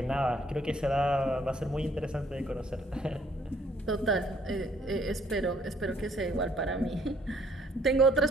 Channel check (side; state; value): both; normal; correlation 0.64